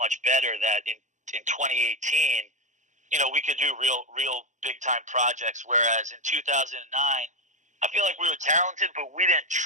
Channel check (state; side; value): late; left; 0.35 ms